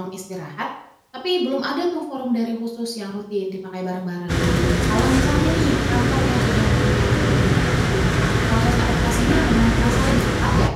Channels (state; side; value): identical; both; correlation 1.00